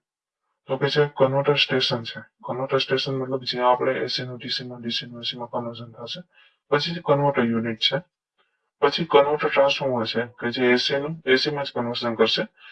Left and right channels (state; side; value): identical; both; correlation 1.00